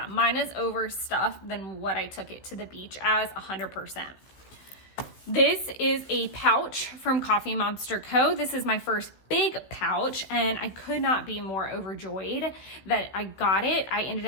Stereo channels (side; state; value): right; late; 15 ms